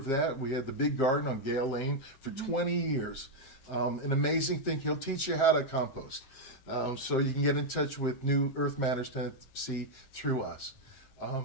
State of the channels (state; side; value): late; right; 7.6 ms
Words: that. We had the big garden on Gale Lane for 20 years. An amazing thing. He'll teach you how to compost. So you can get in touch with New Earth Matters Tennessee through us.